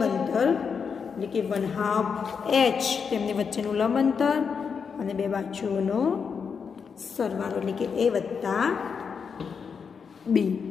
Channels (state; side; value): quieter; right; 6.1 dB